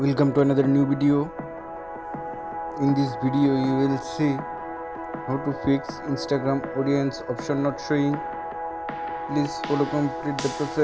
to another new video. In this video you will see how to fix Instagram audience option not showing. Please follow complete the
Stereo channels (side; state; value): left; noise; rumble, 24 dB below the sound